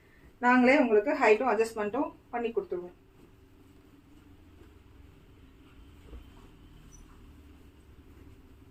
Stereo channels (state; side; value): identical; both; correlation 1.00